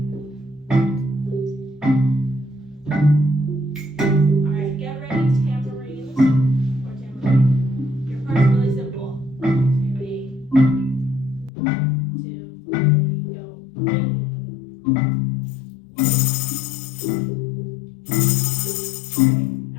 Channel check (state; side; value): drops out; right; at 11.5 s